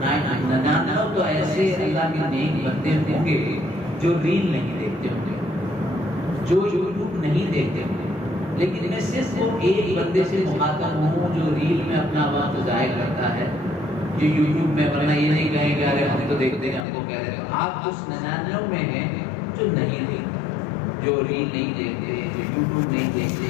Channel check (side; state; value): right; drops out; at 16.9 s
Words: 99 تو ایسے اللہ کے نیک بندے ہوں گے جو ریل نہیں دیکھتے ہوں گے, جو یوٹیوب نہیں دیکھتے ہوں گے. لیکن میں صرف وہ ایک بندے سے مخاطب ہوں جو ریل میں اپنا وقت ضائع کرتا ہے, جو یوٹیوب میں, ورنہ یہ نہیں کہیں گے ارے ہم تو دیکھتے ہیں, ہم کو کہہ رہے ہیں. آپ اس 99 میں ہیں جو نہیں دیکھتے, جو ریل نہیں دیکھتے, جو یوٹیوب نہیں